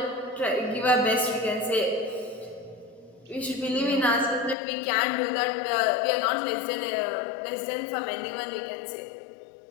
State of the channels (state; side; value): drops out; right; at 4.5 s